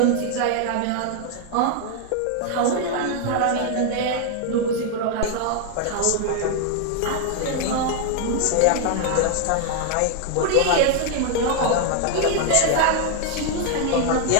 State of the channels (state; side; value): different; both; correlation 0.00